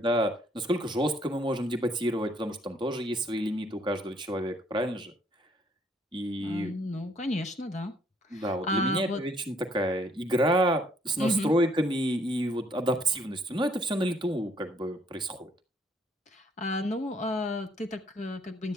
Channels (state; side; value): normal; both; correlation 0.65